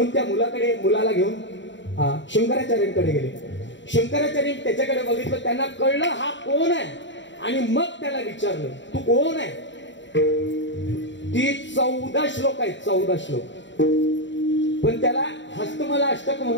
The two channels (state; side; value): late; right; 0.53 ms